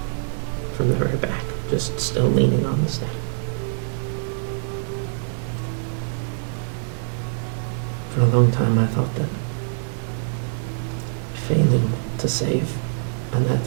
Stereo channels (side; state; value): left; silent; 60 dB below the other